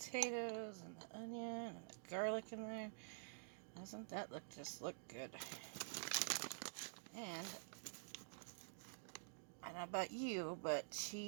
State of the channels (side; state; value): left; silent; digital silence